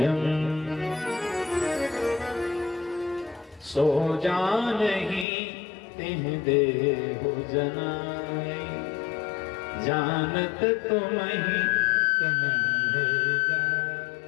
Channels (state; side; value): drops out; right; at 5.2 s